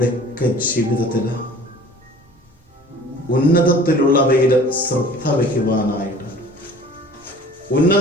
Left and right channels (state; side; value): normal; both; correlation 0.46